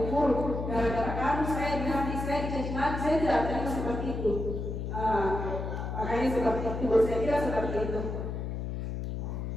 guru, gara-gara kamu saya dihati, saya dicaci maki, saya tidak terima seperti itu. Makanya seperti itu, saya kira seperti itu.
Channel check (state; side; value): noise; left; hum, 4 dB below the sound